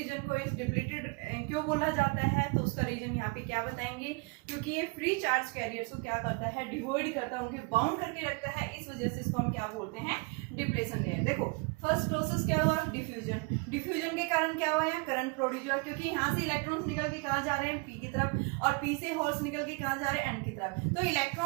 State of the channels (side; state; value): left; quieter; 30.5 dB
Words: को इस डिप्लीटेड क्यों बोला जाता है, तो उसका रीजन यहाँ पे क्या बताएंगे, क्योंकि ये फ्री चार्ज कैरियर्स को क्या करता है, डिवॉइड करता है, उनके बाउंड करके रखता है, इस वजह से इसको हम क्या बोलते हैं, डिप्लेशन लेयर। देखो फर्स्ट प्रोसेस क्या हुआ, डिफ्यूजन। डिफ्यूजन के कारण क्या हुआ, यहाँ करंट प्रोड्यूस हुआ, क्योंकि यहाँ से इलेक्ट्रॉन्स निकल के कहाँ जा रहे हैं, पी की तरफ, और पी से होल्स निकल के कहाँ जा रहे हैं, एन की तरफ। तो